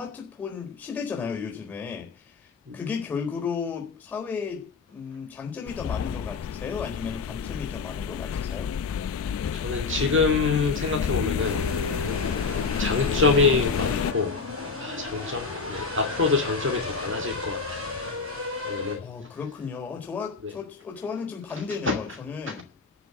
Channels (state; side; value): quieter; right; 4.6 dB